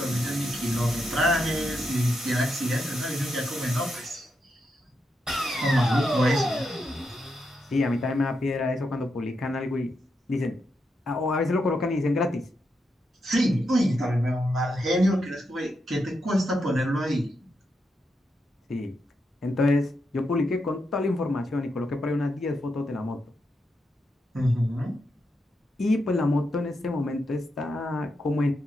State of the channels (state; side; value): normal; both; correlation 0.84